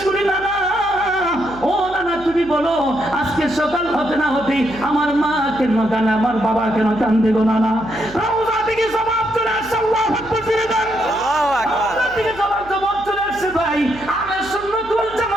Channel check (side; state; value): right; noise; hum, 19 dB below the sound